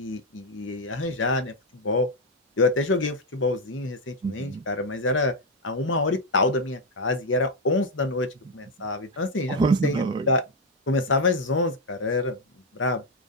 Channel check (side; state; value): both; normal; correlation 0.04